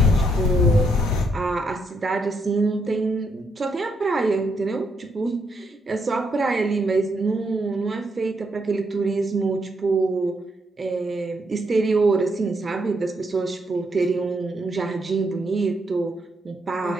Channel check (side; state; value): both; normal; correlation 0.77